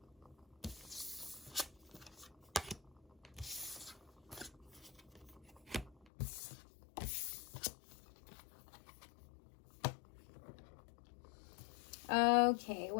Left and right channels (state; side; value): drops out; right; at 6.1 s